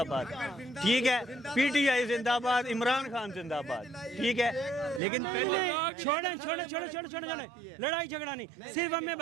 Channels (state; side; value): drops out; left; at 5.0 s